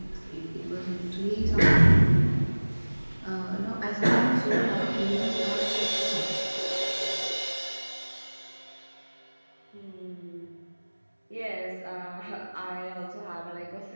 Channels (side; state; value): both; inverted; correlation -1.00